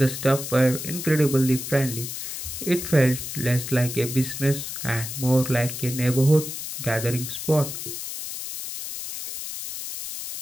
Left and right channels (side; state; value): left; noise; hiss, 7 dB below the sound